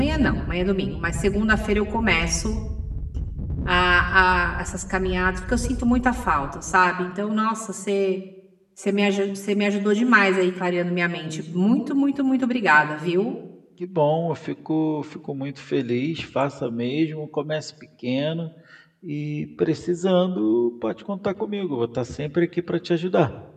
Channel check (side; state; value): both; identical; correlation 1.00